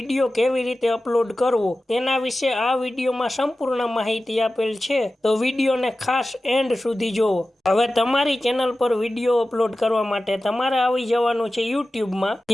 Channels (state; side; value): normal; both; correlation 0.95